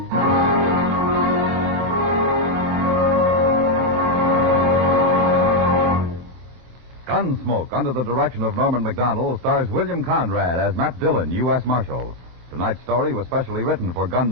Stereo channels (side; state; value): left; late; 24 ms